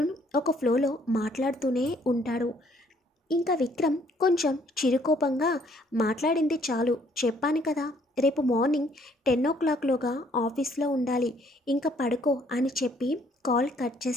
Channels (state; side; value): normal; both; correlation 0.64